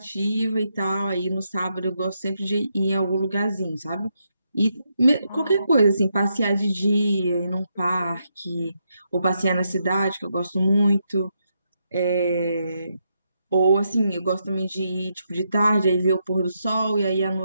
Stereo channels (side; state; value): both; inverted; correlation -0.81